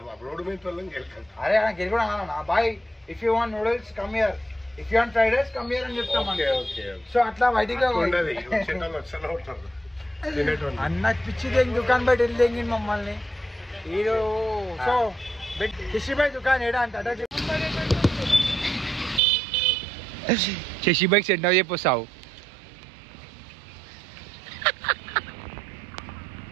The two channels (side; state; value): left; drops out; at 19.2 s